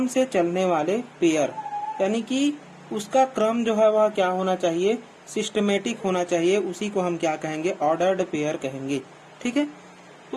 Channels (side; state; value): both; identical; correlation 1.00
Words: से चलने वाले पेयर, यानी कि उसका क्रम जो है वह क्या होना चाहिए, सिस्टमेटिक होना चाहिए। उसी को हम क्या कहेंगे, ऑर्डर्ड पेयर कहेंगे। ठीक है,